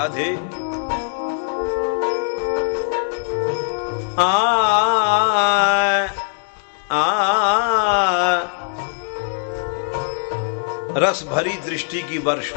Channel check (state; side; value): silent; right; digital silence